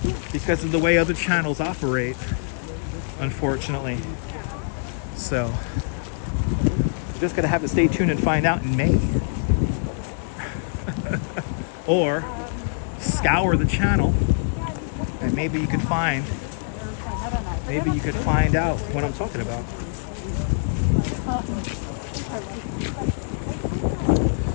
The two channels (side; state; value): right; silent; digital silence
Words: because of the way other channels operate, unfortunately. So you're just going to have to stay tuned and find out in May. Or scour the channel and maybe you could find out what I'm talking about.